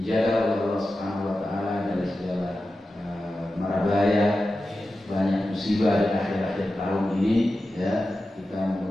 oleh Allah Subhanahu wa taala dari segala mara bahaya, banyak musibah di akhir-akhir tahun ini ya. Kita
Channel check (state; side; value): normal; both; correlation 0.93